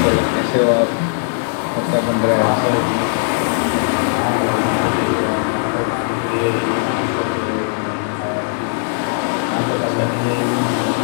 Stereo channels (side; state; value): right; silent; 67 dB below the other